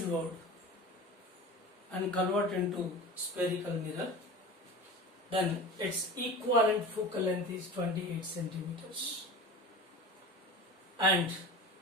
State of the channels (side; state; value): both; normal; correlation 0.34